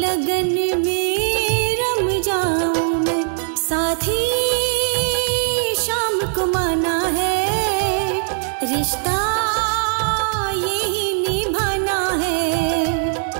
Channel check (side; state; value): left; silent; 66 dB below the other